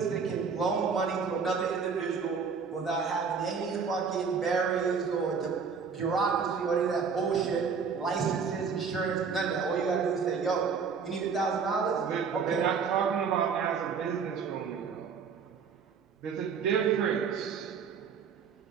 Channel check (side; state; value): left; quieter; 5.8 dB